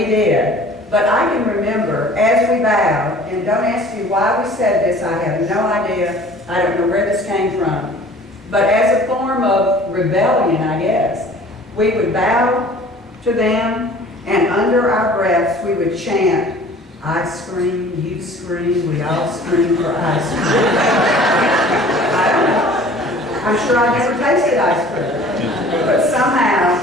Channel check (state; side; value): normal; both; correlation 0.48